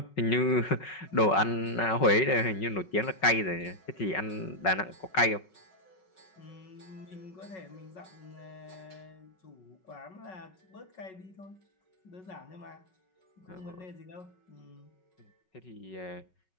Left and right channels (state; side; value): late; right; 5.4 ms